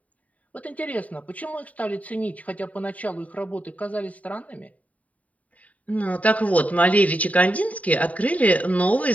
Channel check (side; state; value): right; late; 0.069 ms